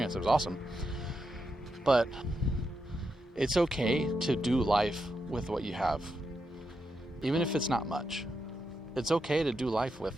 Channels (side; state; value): both; normal; correlation 0.84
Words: It was awesome. But it's okay to do life with what you have, even if it's not much. It's okay to do life with